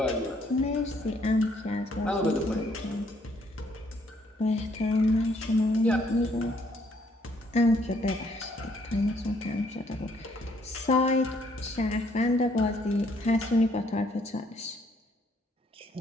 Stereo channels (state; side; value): normal; both; correlation 0.67